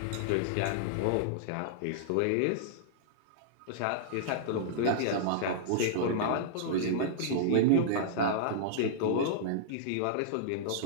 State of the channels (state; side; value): different; both; correlation -0.02